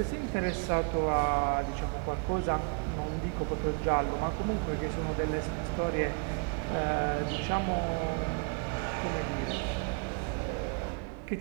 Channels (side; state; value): left; quieter; 36.3 dB